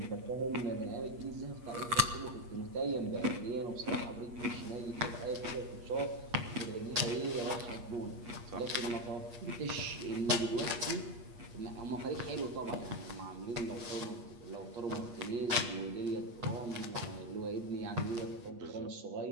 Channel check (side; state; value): left; late; 8.4 ms